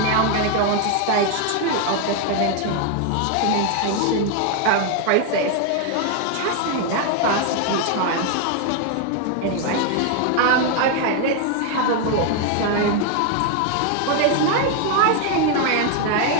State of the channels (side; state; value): both; different; correlation 0.00